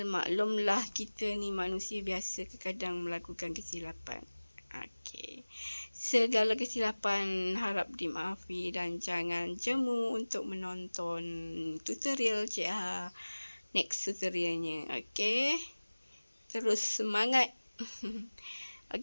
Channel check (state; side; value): inverted; both; correlation -1.00